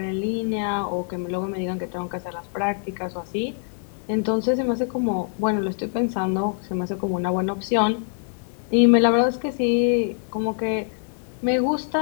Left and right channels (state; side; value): silent; right; 58 dB below the other